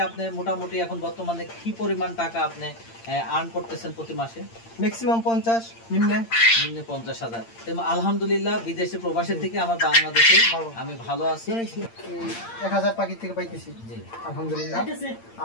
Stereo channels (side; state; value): right; late; 8.7 ms